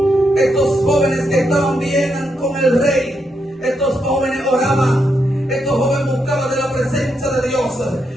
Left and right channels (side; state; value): both; normal; correlation 0.81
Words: Estos jóvenes que estaban bien con el rey, estos jóvenes oraban, estos jóvenes buscaban de la presencia de Dios.